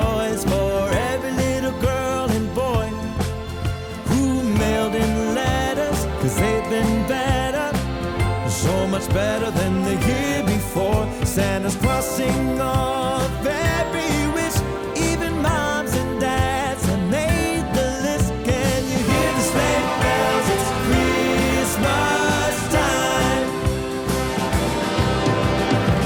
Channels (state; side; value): identical; both; correlation 1.00